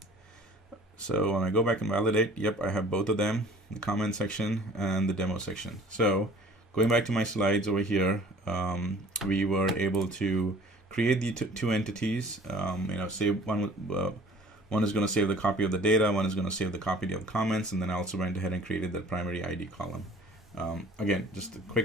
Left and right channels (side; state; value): both; normal; correlation 0.50